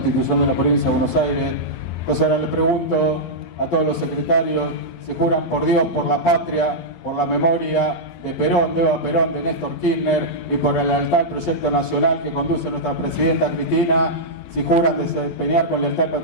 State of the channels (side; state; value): right; late; 12 ms